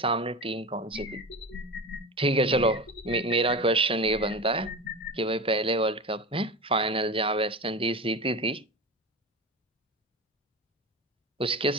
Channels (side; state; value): both; normal; correlation 0.27